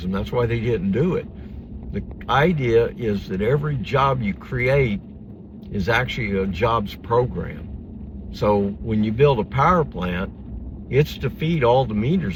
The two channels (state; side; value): identical; both; correlation 1.00